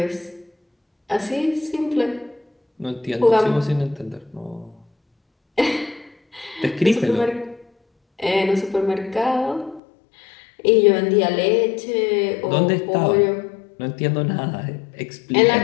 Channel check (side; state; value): right; drops out; at 9.8 s